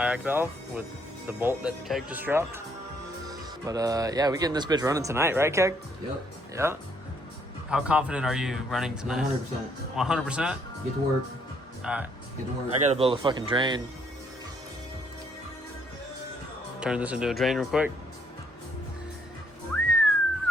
valve with the bolt that Keg just dropped. But yeah, we getting this bitch running tonight, right, Keg? Yep. Yeah. How confident are you running tonight? 100%. 100%? Get to work. Alright. Get to work. I gotta build a fucking drain. Turn this into a drain real quick.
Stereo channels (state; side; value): normal; both; correlation 0.68